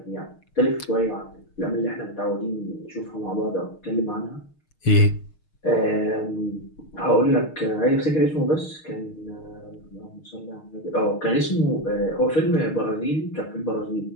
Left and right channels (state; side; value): late; right; 6.5 ms